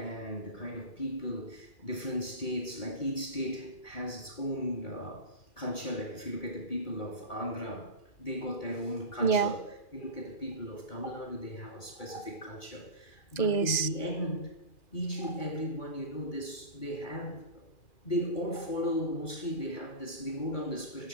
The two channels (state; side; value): late; right; 2.4 ms